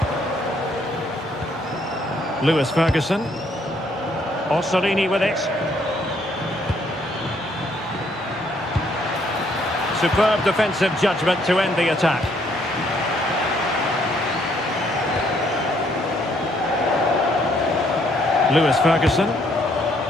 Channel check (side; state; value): both; normal; correlation 0.68